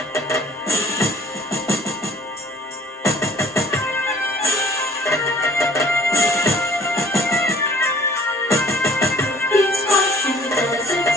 Beats once in the desert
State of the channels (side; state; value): both; normal; correlation 0.53